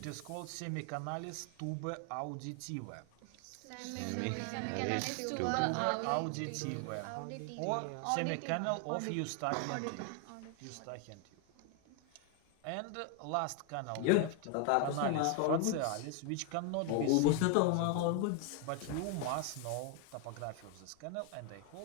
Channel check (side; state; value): both; different; correlation 0.01